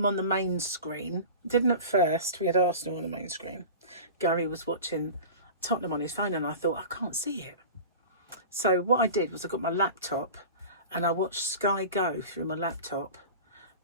on the main screen. Didn't at first. We had Arsenal on the main screen. Gary was watching Tottenham on his phone, and I thought, I can't see it. So what I did was I got my laptop and I watched Sky Go through my laptop,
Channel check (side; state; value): both; inverted; correlation -0.34